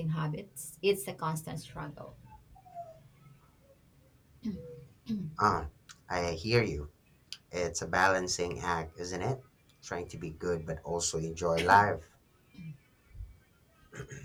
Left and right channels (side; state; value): both; identical; correlation 1.00